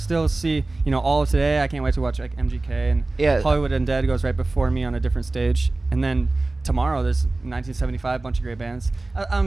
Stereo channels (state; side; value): quieter; left; 3.1 dB